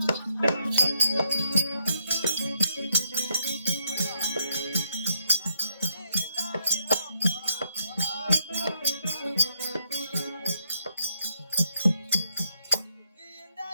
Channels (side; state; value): both; inverted; correlation -0.76